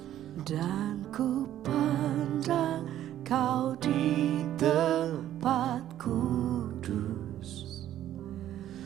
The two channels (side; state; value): left; quieter; 12.1 dB